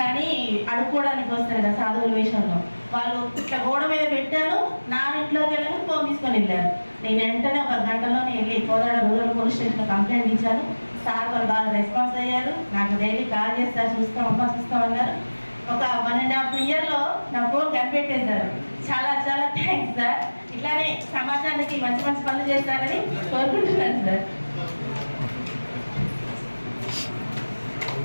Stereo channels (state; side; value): inverted; both; correlation -1.00